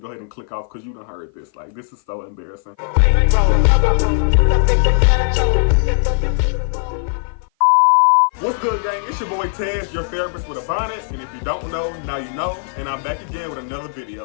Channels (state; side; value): silent; right; 55 dB below the other